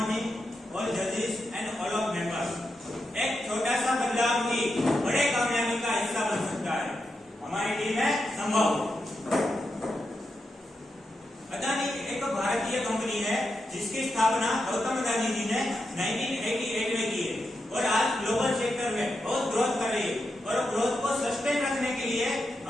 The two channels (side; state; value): both; normal; correlation 0.87